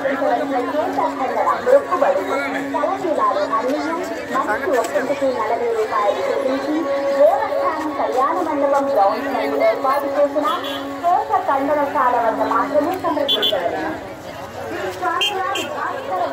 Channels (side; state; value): both; identical; correlation 1.00